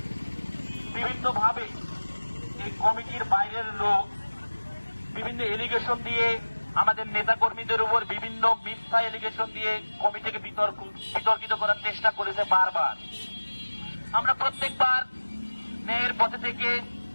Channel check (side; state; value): both; inverted; correlation -1.00